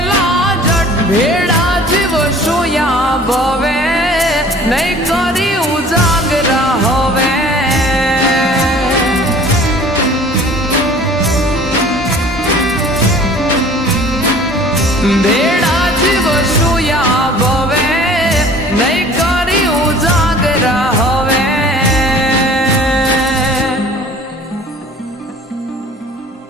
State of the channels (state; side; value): normal; both; correlation 0.48